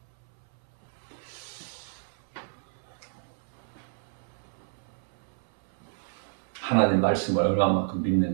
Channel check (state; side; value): silent; left; 58 dB below the other